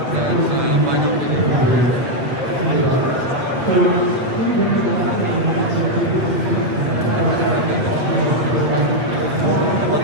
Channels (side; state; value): left; late; 8.4 ms